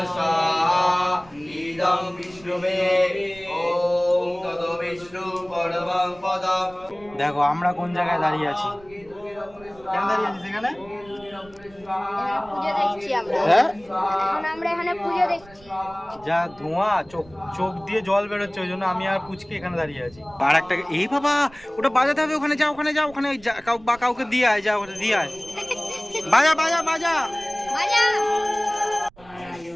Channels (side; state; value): right; noise; rumble, 24 dB below the sound